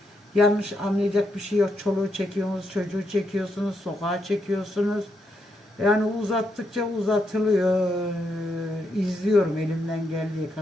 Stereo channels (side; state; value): both; normal; correlation 0.80